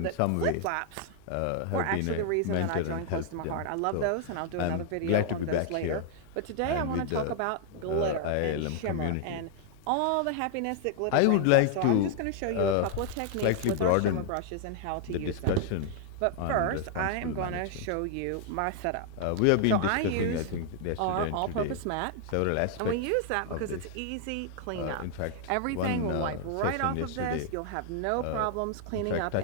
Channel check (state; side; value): different; both; correlation 0.00